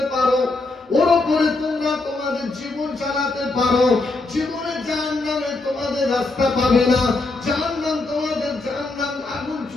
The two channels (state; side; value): quieter; right; 3.2 dB